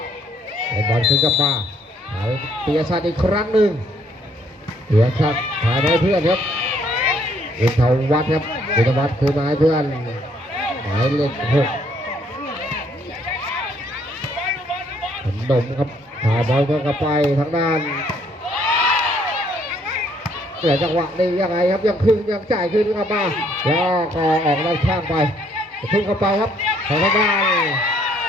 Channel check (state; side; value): normal; both; correlation 0.66